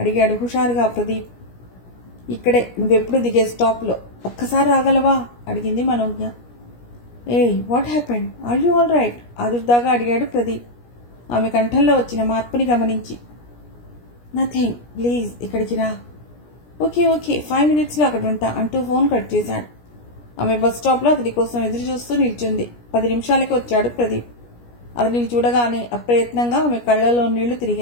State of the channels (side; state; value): right; late; 17 ms